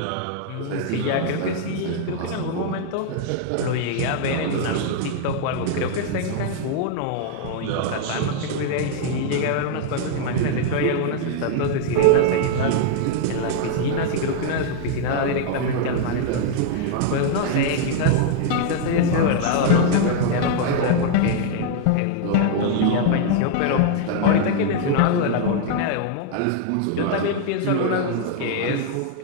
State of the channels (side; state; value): both; different; correlation 0.00